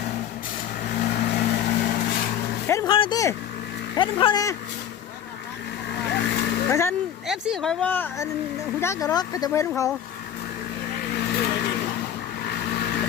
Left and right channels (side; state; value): right; quieter; 9.6 dB